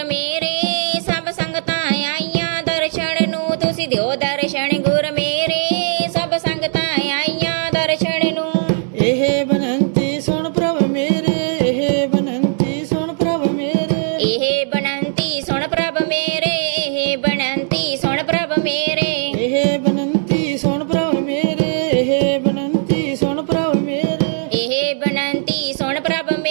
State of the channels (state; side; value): silent; left; 67 dB below the other